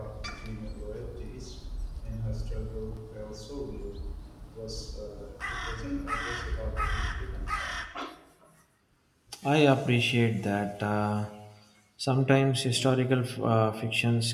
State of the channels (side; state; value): both; identical; correlation 1.00